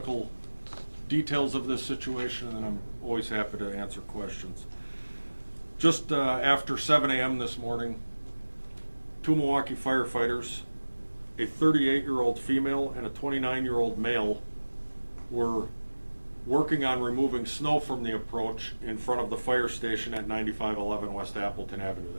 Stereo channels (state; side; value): inverted; both; correlation -1.00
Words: details of this situation, and then I'm always happy to answer questions. Just after 7 a.m. this morning, two Milwaukee firefighters, a 38-year-old female and a 29-year-old male, were working on removing snow from the approach in front of the fire station at 9511 West Appleton Avenue.